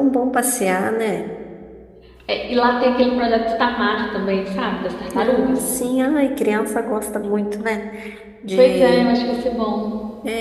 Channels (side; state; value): both; identical; correlation 1.00